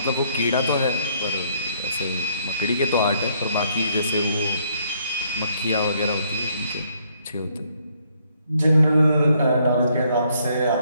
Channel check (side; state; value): both; inverted; correlation -0.68